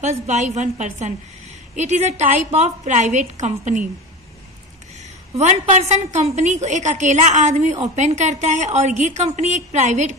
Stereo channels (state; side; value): normal; both; correlation 0.28